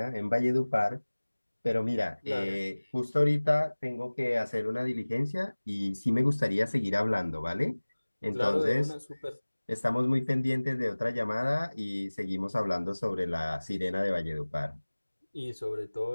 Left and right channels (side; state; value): both; inverted; correlation -1.00